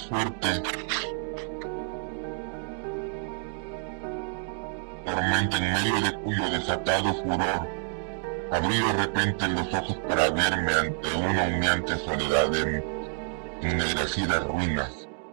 fuerte tormenta en medio de cuyo desatado furor abrí de repente los ojos para verme ante una humeante soledad de ennegrecidas ruinas.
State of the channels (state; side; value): silent; left; 58 dB below the other